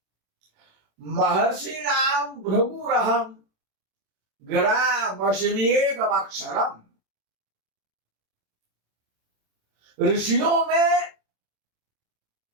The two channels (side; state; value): left; late; 27 ms